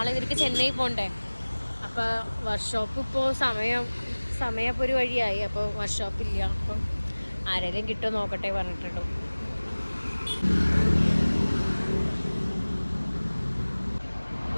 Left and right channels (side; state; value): both; inverted; correlation -1.00